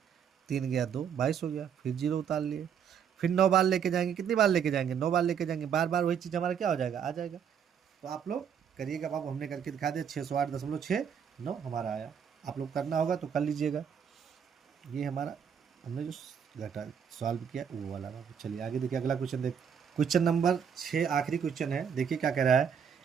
3 गया 2, 22 हो गया। फिर जीरो उतार लिए। फिर 9 बार लेके जाएंगे। कितनी बार लेके जाएंगे? 9 बार लेके जाएंगे। बार बार वही चीज़ हमारा क्या हो जाएगा? आ जाएगा। तो आप लोग करिएगा बाबू, हमने करके दिखा दिया। 608.69 हमारा आया। आप लोग करना होगा तो कर लीजिएगा। ये हमारा हमने जो घटा सॉल्व किया वो वाला बाबू। चलिए आगे देखिए, अगला क्वेश्चन देख। क्वेश्चन नंबर 6 आखिरी क्वेश्चन है। देखिए क्या कह रहा है।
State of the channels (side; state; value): left; quieter; 7.7 dB